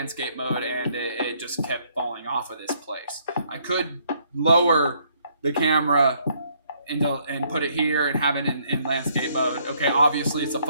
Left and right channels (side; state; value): both; inverted; correlation -0.68